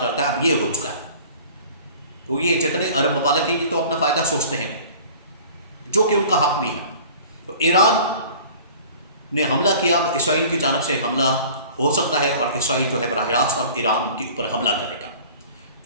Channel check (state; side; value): inverted; both; correlation -0.45